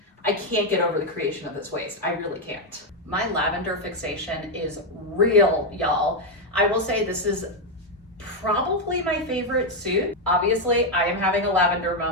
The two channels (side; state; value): both; normal; correlation 0.02